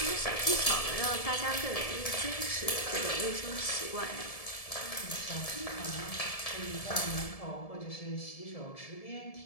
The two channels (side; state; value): right; late; 1.7 ms